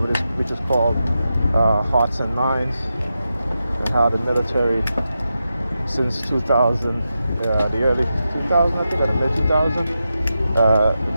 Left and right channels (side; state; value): both; inverted; correlation -0.89